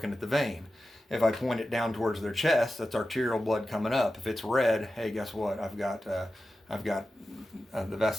at the vein. If I point it down towards their chest, that's arterial blood coming up. If it's red, hey, guess what? I've got the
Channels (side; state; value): both; normal; correlation 0.93